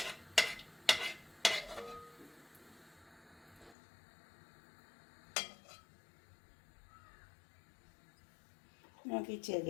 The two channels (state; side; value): drops out; right; at 3.8 s